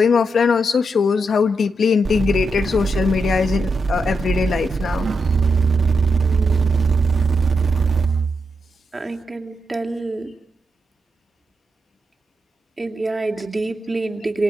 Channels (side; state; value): both; normal; correlation 0.83